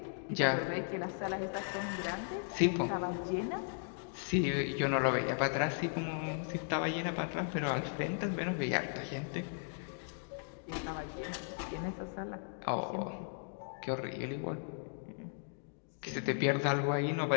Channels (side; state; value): right; silent; digital silence